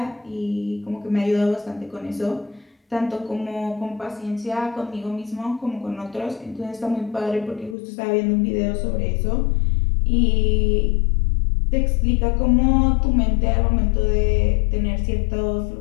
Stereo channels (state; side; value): drops out; right; at 7.8 s